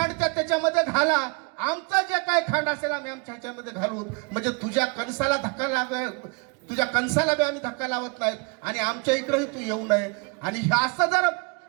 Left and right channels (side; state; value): left; quieter; 33.1 dB